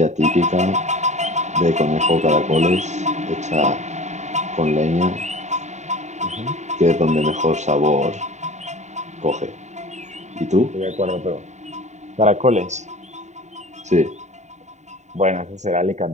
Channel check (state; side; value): late; left; 0.34 ms